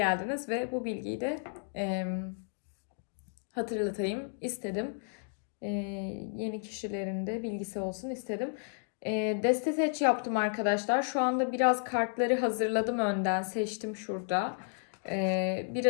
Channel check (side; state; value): right; silent; 56 dB below the other